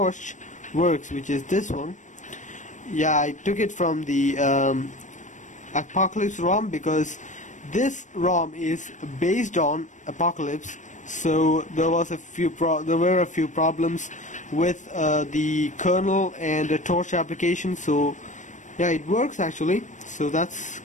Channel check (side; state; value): right; late; 0.36 ms